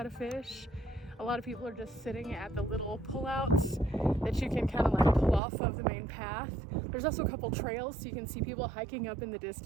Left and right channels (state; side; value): drops out; left; at 5.4 s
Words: to fish. A lot of people are just sitting at the little pullouts that you can kind of like pull off of the main path. There's also a couple trails so you can see people hiking up in the